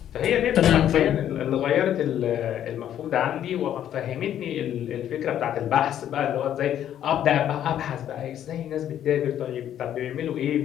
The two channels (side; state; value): right; quieter; 10.7 dB